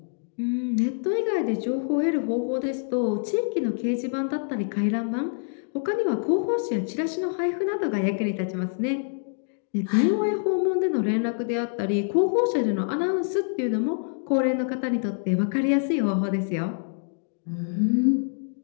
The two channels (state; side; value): silent; right; digital silence